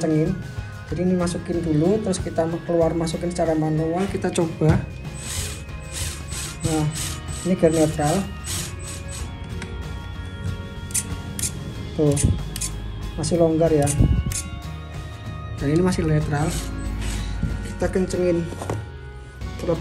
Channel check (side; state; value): both; identical; correlation 1.00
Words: Jadi ini masukin dulu, terus kita keluar masukin secara manual. Kita coba. Nah, ini gear netral tuh, masih longgar ya, dan ini masih netral. Kita kencengin